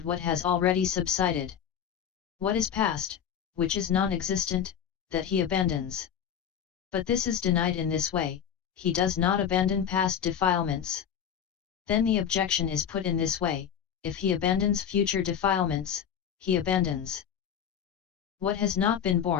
what has already subsided. What is past, which is non-existent, that he abandons? But this is denied in this way, he does not abandon past defilements. Then the objection is put in this way, if he abandons future defilements, he abandons what has not been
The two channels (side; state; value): right; quieter; 8.6 dB